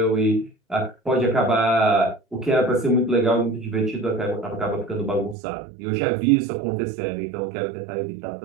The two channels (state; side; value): drops out; left; at 5.4 s